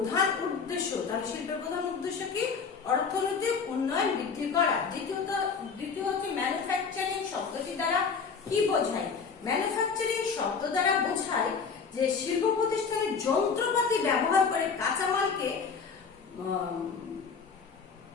উদ্দেশ্য। তাহলে শিল্পের প্রধান উদ্দেশ্য কি? অর্থনৈতিক উন্নয়ন বৃদ্ধি করা। দ্বিতীয় হচ্ছে ম্যানুফ্যাকচারিং শব্দটি দ্বারা কি বোঝায়? ম্যানুফ্যাকচারিং শব্দ দ্বারা বোঝায় যে শিল্প প্রতিষ্ঠানের যন্ত্রপাতি ব্যবহার করে কাঁচামালকে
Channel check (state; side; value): quieter; right; 5.6 dB